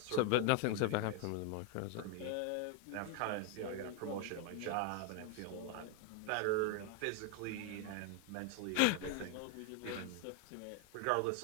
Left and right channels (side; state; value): both; different; correlation 0.01